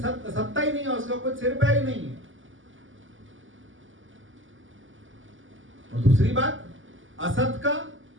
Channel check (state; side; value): late; left; 0.57 ms